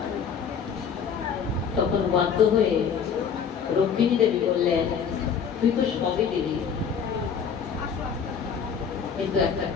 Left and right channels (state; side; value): quieter; right; 6.9 dB